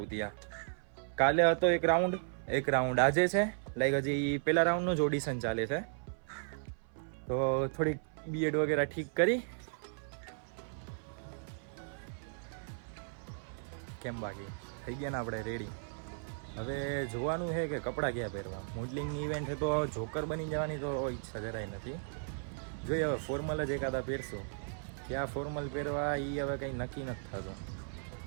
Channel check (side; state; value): left; silent; 54 dB below the other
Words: ત્યાં. કાલે હતો એક રાઉન્ડ આજે છે. લાઈક હજી પેલા રાઉન્ડનું જ ઓડિશન ચાલે છે. તો થોડીક બીએડ વગેરે ઠીક કરી કેમ બાકી થઈ ગયા ને આપણે રેડી. હવે જોવાનું છે કે કપડાં ક્યાં પહેરવા. મોડલિંગની ઇવેન્ટ છે તો જોકર બની જવાની તો ઈચ્છા જરાય નથી. જોઈએ હવે ફોર્મલ જ એકાદા પહેરશું. ક્યાં ફોર્મલ પહેરવા એ હવે કંઈ નક્કી નથી થતું.